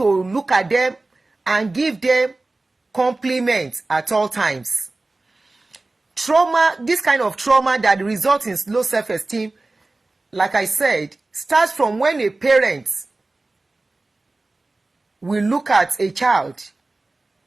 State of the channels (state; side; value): quieter; left; 3.1 dB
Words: look at them and give them compliment at all times. Trauma, this kind of trauma that results in low self-esteem, like I said, starts from when a parent will look at a child